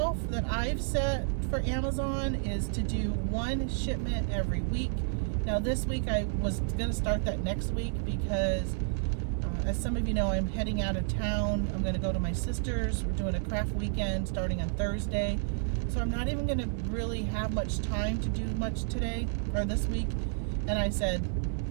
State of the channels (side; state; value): left; silent; digital silence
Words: that I've set for Amazon, is to do one shipment every week. Now this week I was going to start that next week because as some of you know, I'm heading out of town. I'm going to go to my sister's. We're doing a craft weekend starting on Thursday. So I'm not even going to really have much time to do much today or this week. And I said,